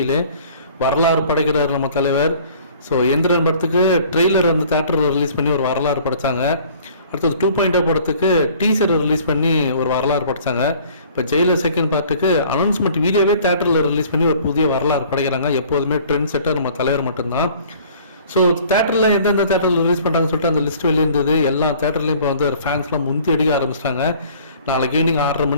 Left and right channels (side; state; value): both; inverted; correlation -0.52